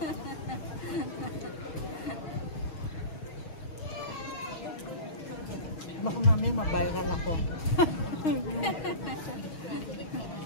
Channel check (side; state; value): right; late; 6.3 ms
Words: Baka mamaya ma-viral ako.